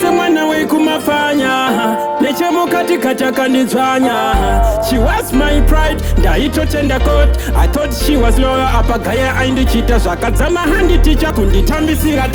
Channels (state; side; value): identical; both; correlation 1.00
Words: wekumafanya, neche mukati kataka nizwanya. She was my pride, ndaito tender coat. I thought she was loyal, apagaya aindichita zvakadzama handi ticha kunditambisira